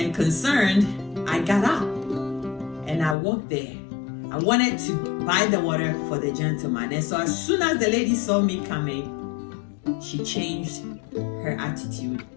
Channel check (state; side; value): drops out; right; at 3.2 s